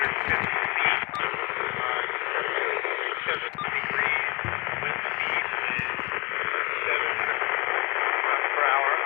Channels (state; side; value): quieter; right; 25.1 dB